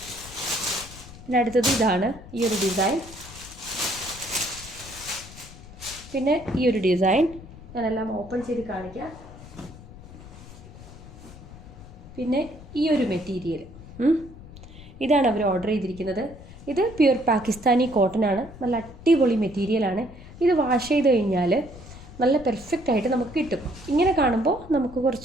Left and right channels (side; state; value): left; noise; rumble, 17 dB below the sound